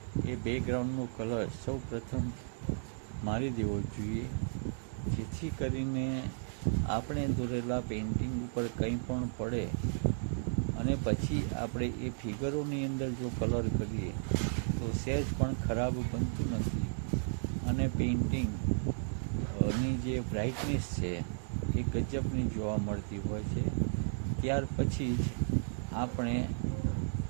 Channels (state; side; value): silent; left; digital silence